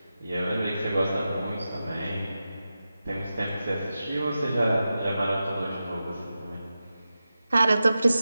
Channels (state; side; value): inverted; both; correlation -0.92